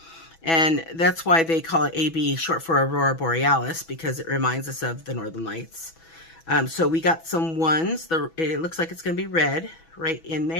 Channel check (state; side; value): late; right; 6.1 ms